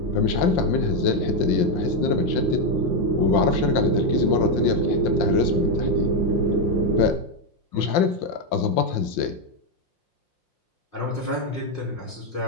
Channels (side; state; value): right; late; 5.7 ms